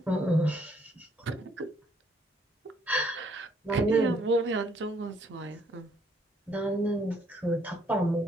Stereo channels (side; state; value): both; normal; correlation 0.67